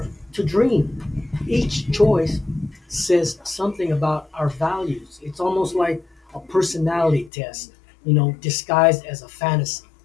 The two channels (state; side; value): drops out; right; at 7.3 s